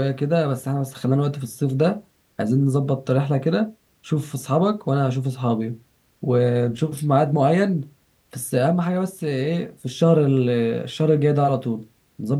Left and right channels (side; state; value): both; identical; correlation 1.00